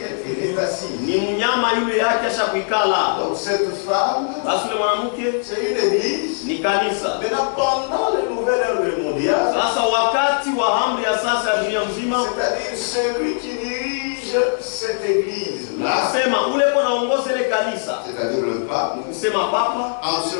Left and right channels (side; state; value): right; silent; digital silence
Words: elle est assise. ni mnyama yule yake asha kuikala. Donc cette femme, Basi ule mwanamke c'est une église. ni kanisa. Maintenant, pendant le nouvel ordre mondial, Sasa wakati wa amri ya sasa ya dunia mzima, c'est-à-dire celui qui dirige cette église-là, nasema ule kwa naongoza ile kanisa, c'est-à-dire le pape, kusema papa, en ce